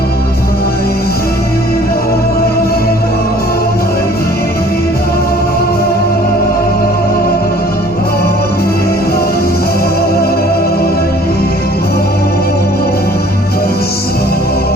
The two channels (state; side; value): normal; both; correlation 0.53